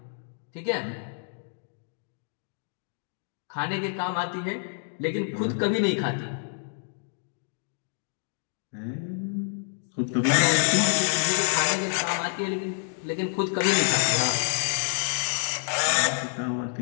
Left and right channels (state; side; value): silent; right; digital silence